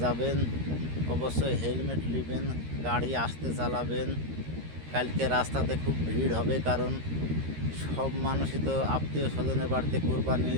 যাবেন, অবশ্যই হেলমেট নেবেন, গাড়ি আস্তে চালাবেন। কালকে রাস্তাতে খুব ভিড় হবে, কারণ সব মানুষই তো আত্মীয় স্বজনের বাড়িতে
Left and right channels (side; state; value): left; late; 13 ms